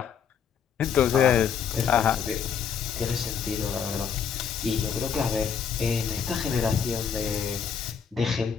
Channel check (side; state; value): right; quieter; 7.2 dB